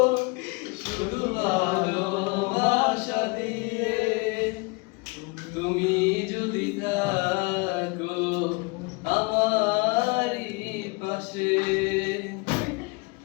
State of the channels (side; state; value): right; quieter; 27.5 dB